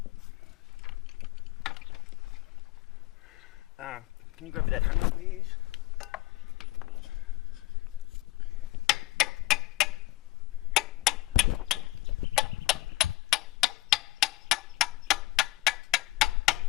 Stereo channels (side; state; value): right; quieter; 18.3 dB